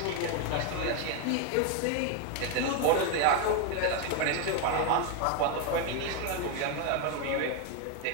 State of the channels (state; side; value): different; both; correlation 0.01